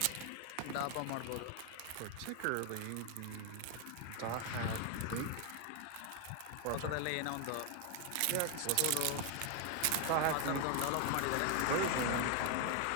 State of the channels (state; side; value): different; both; correlation 0.01